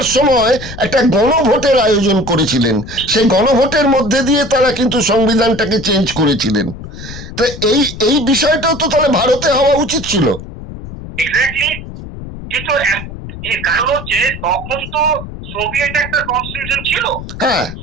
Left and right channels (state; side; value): noise; left; rumble, 11 dB below the sound